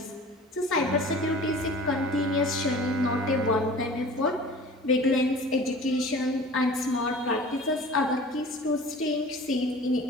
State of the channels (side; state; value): both; normal; correlation 0.42